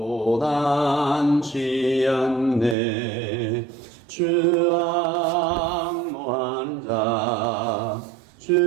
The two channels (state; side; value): drops out; left; at 2.8 s